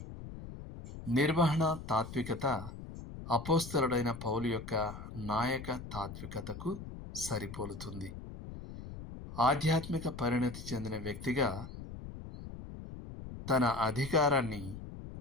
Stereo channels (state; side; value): noise; left; rumble, 11 dB below the sound